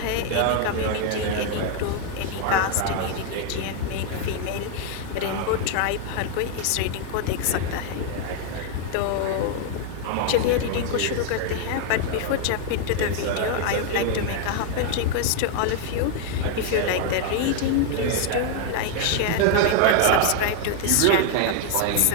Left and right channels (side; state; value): both; different; correlation 0.00